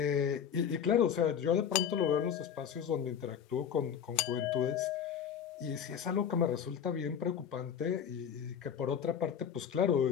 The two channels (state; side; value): quieter; right; 8.2 dB